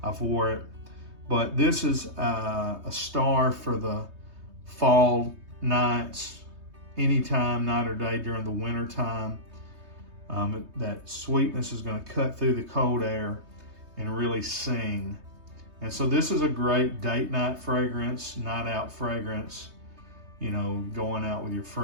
I've wore it. But this is a star for the fall nights, anytime, night or day during the winter time. That sweetness is going to cut through the cold air and really sing. And so this is a great date night fragrance, night out fragrance, going out with your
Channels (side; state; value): left; late; 3.2 ms